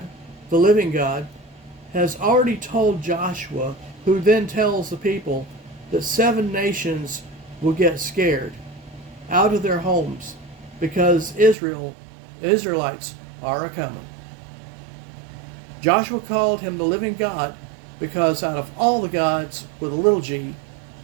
the living God, has already told Joshua, who then tells the people that 7 nations will get scared out of their homes because Israelites are a-coming. Joshua called him the living God because out of all the gods with a little g,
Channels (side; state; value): left; drops out; at 11.6 s